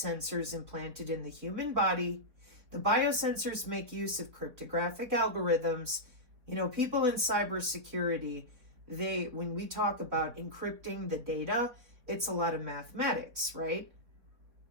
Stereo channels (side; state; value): left; late; 4.2 ms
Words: implanted in the human body. The biosensors make use of cryptographic algorithms You know, people in cybersecurity, when we talk about encrypting the data, it's a lot of mathematics, right?